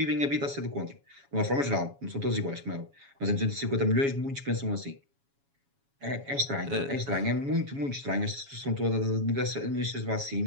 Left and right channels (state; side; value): late; left; 7.2 ms